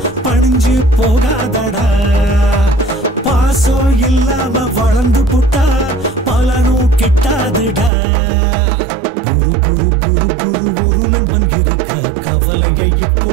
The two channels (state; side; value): drops out; left; at 7.9 s